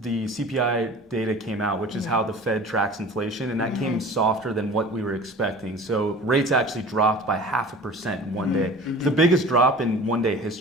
the CPI data came out, which is how the Fed tracks inflation, and that came softer than what we were expecting. So rates actually dropped by 0.5% in one day. The biggest drop in one-day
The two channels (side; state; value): both; normal; correlation 0.42